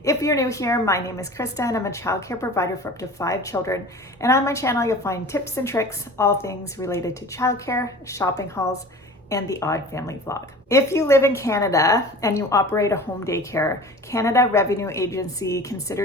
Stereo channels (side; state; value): both; normal; correlation 0.39